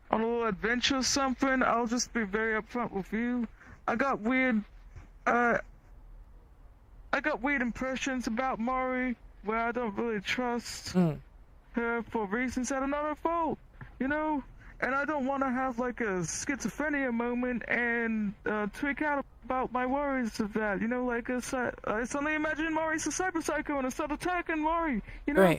on a little adventure or something, I'll just be very upfront with you. I got weird impressions about Mari where I don't really trust her for reasons that are not her fault, you know? And I don't want to have like a schizophrenia moment and tweak out about my worries of that, you know? Like, I suddenly imagine Mari's a cyber psycho and I start attacking Mari, you know?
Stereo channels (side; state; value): both; identical; correlation 1.00